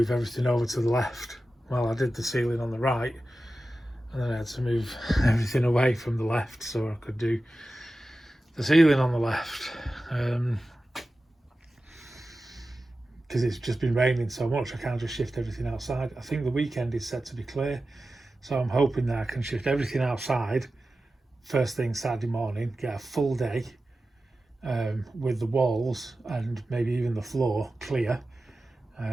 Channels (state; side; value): normal; both; correlation 0.94